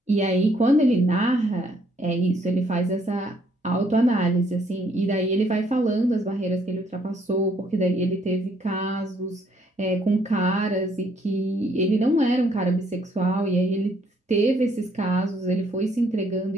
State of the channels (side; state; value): both; normal; correlation 0.67